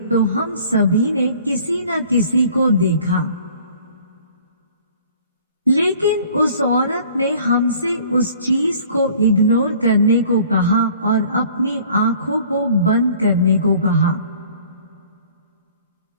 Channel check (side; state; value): both; inverted; correlation -0.52